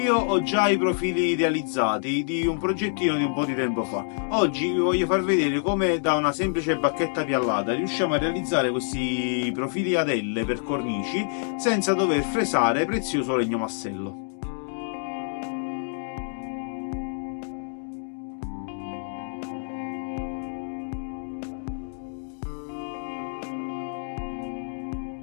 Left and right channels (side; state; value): right; silent; digital silence